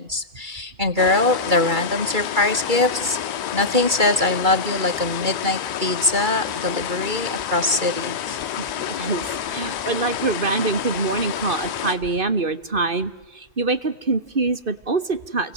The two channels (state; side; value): late; left; 2.3 ms